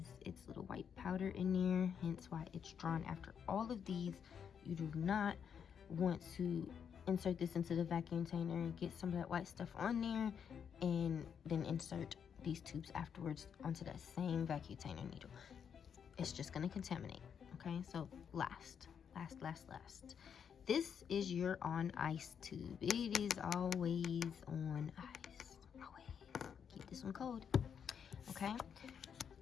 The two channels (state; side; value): quieter; right; 7.5 dB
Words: its little white powder in there, hence why it's drawn after all of these. You do not want to insert this into the vacuum container and get some of that white stuff on there and then insert these tubes afterwards onto that same vacuum container needle. It's just going to contaminate, okay? So last. This is your on ice tube. It is always on ice. Always. Keep this one cold. Okay?